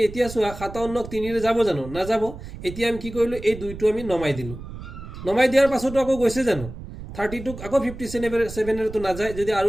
এতিয়া চোৱা 57ক 3ৰে যাব জানো নাযাব এতিয়া আমি কি কৰিলোঁ এই দুইটো আমি নমাই দিলোঁ নমাই দিয়াৰ পাছতো আকৌ গৈছে জানো 32ক আকৌ 57ৰেতো নাযায় যদি আৰু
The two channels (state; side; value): noise; right; rumble, 12 dB below the sound